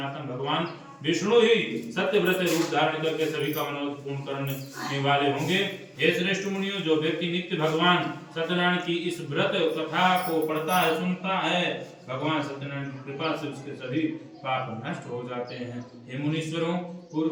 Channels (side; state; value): both; identical; correlation 1.00